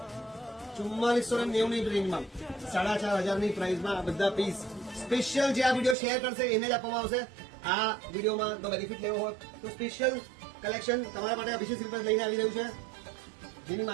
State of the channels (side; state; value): left; drops out; at 6.0 s